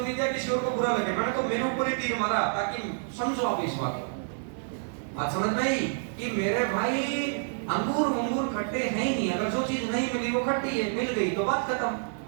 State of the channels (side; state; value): left; silent; 59 dB below the other